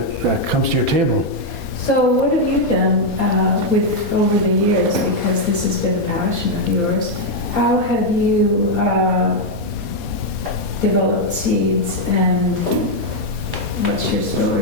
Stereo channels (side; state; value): right; late; 4.2 ms